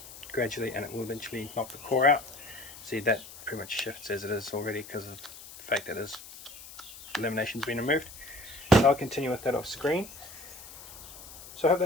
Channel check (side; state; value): left; noise; hiss, 16 dB below the sound